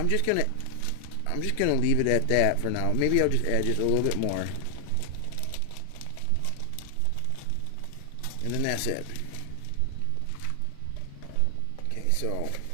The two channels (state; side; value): different; both; correlation 0.00